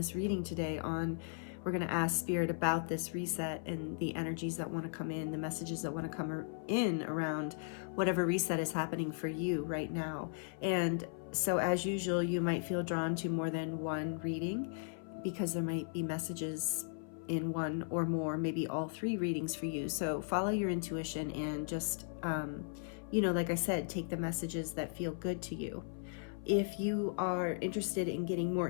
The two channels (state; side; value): silent; right; 53 dB below the other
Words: reading today. We're going to ask Spirit about this reset and the energies that want to come in, the messages that want to come in around whatever reset is happening for you right now. And so as usual, you might feel drawn to more than one reading, because there might be messages in one or more, maybe all 3 readings for you. So follow your intuition and just, like I said, take the messages that feel good to you. If you are interested in getting